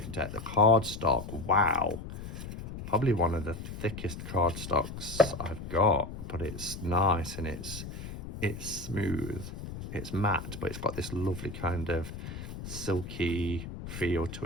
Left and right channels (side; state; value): left; noise; rumble, 9 dB below the sound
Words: deck. The card stock, wow. Probably one of the thickest card stocks I've got, but it's nice and it's smooth. It's matte, but it's got this lovely kind of silky feel to